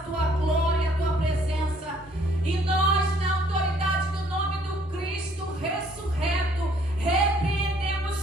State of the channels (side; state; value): both; normal; correlation 0.62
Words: glória, à tua presença. E nós, na autoridade do nome do Cristo ressurreto,